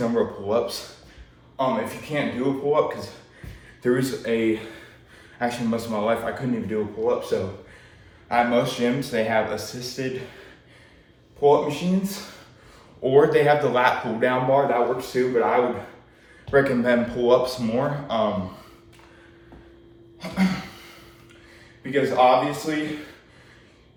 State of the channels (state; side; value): identical; both; correlation 1.00